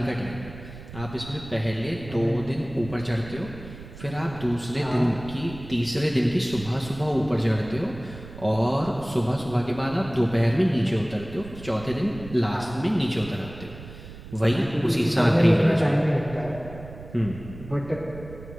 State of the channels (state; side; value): noise; right; rumble, 15 dB below the sound